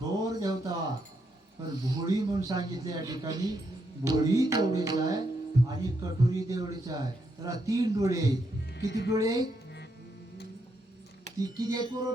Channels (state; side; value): normal; both; correlation 0.79